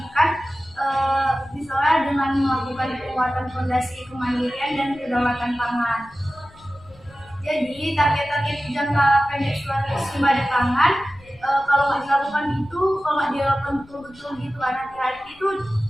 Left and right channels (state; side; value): noise; left; rumble, 25 dB below the sound